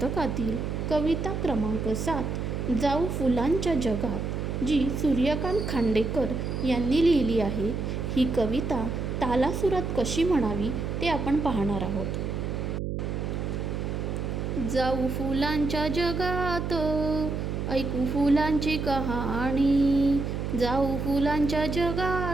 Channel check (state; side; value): noise; right; hum, 3 dB below the sound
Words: कविता क्रमांक 7 जाऊ फुलांच्या जगात, जी सूर्यकांत खांडेकर यांनी लिहिली आहे. ही कविता तालासुरात कशी म्हणावी ते आपण पाहणार आहोत. जाऊ फुलांच्या जगात, ऐकू फुलांची कहाणी. जाऊ फुलांच्या